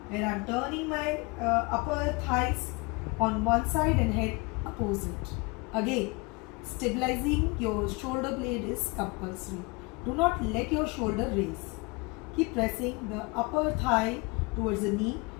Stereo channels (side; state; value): right; quieter; 27.7 dB